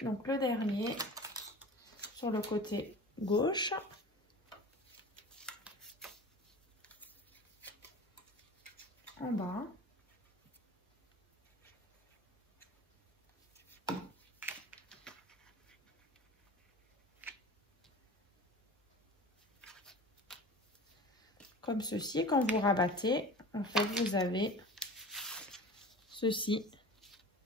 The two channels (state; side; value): normal; both; correlation 0.37